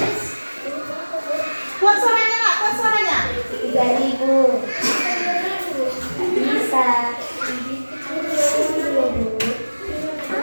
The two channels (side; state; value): both; inverted; correlation -1.00